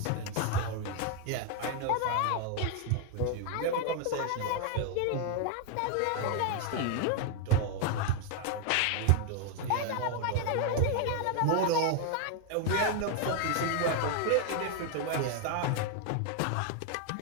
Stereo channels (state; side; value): different; both; correlation 0.01